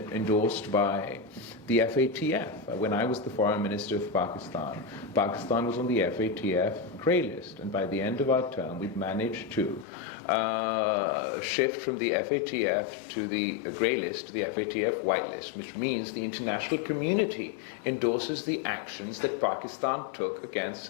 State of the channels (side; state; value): right; drops out; at 9.9 s